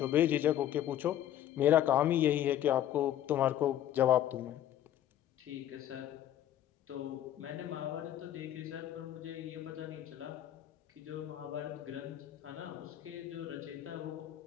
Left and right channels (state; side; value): quieter; right; 11.8 dB